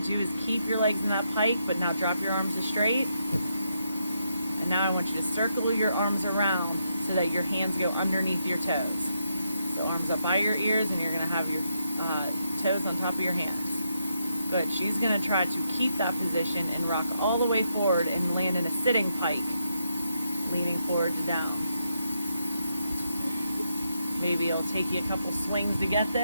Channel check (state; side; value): inverted; both; correlation -0.81